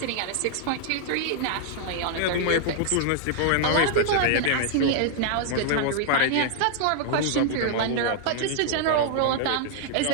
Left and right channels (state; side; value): different; both; correlation -0.01